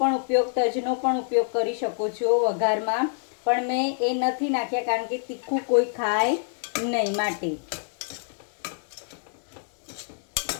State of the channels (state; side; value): silent; right; digital silence